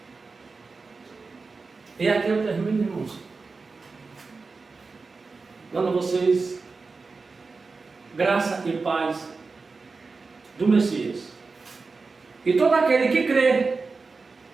E aqui eu termino, irmãos, dando a vocês graça e paz do Messias. E todo aquele que crê,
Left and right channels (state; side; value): quieter; left; 4.2 dB